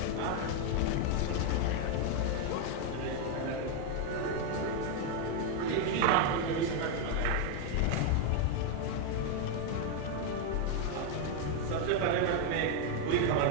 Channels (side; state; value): both; different; correlation 0.00